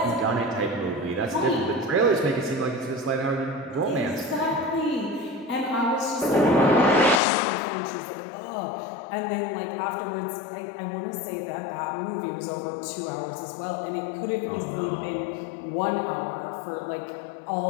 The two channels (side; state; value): right; drops out; at 7.2 s